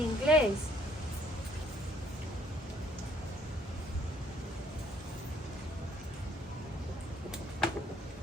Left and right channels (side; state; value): both; normal; correlation 0.63